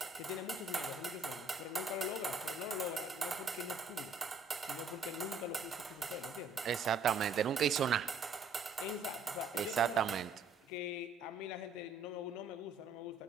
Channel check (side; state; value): left; quieter; 3.8 dB